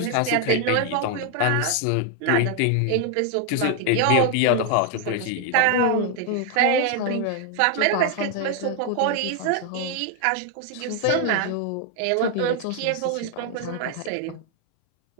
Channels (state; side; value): different; both; correlation 0.00